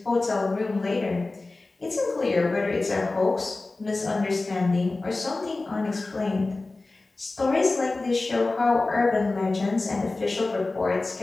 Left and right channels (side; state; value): right; quieter; 3.3 dB